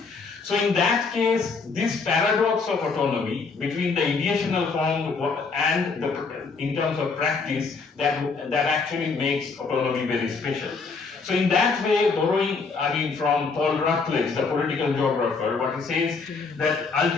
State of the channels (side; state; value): right; quieter; 4.6 dB